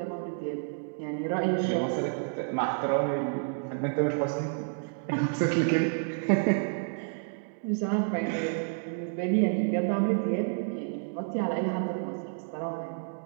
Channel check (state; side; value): silent; left; digital silence